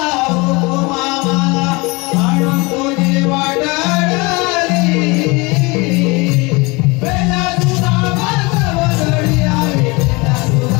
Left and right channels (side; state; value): right; quieter; 26.0 dB